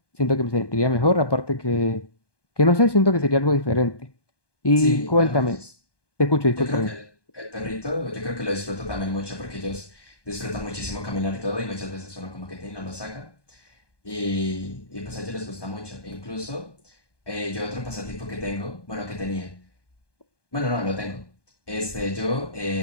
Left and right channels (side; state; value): right; late; 1.2 ms